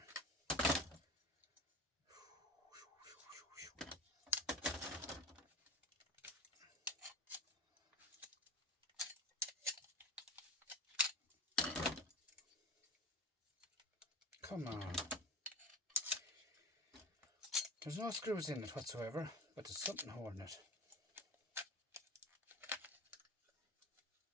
Come on. There's no screws in it whatsoever, but there's something holding it.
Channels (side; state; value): both; normal; correlation 0.30